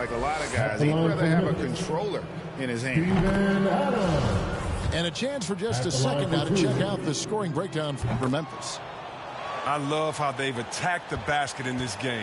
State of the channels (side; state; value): both; identical; correlation 1.00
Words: a lot of guys. He'd rather have a controller in his hand. And a chance for just a second now to check out the scoring breakdown for Memphis. I love how they've attacked the basket in this